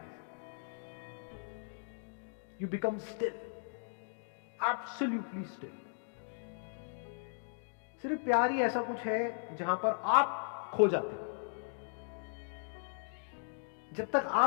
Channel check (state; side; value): silent; right; digital silence